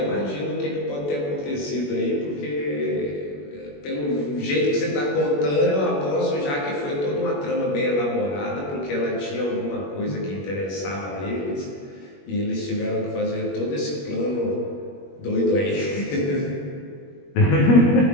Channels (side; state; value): right; late; 21 ms